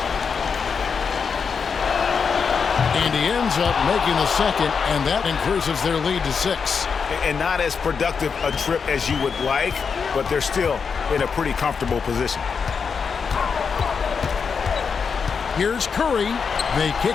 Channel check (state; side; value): quieter; right; 5.9 dB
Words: ends up making the second, and that increases their lead to 6. And not as productive a trip as you would like, but they're still in a pretty comfortable position. Here's Curry. They